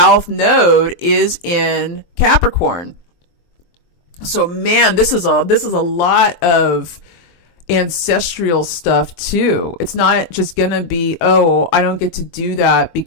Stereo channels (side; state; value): right; late; 23 ms